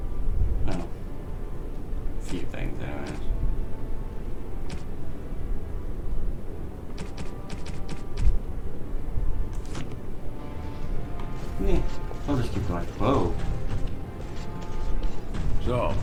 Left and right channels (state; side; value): identical; both; correlation 1.00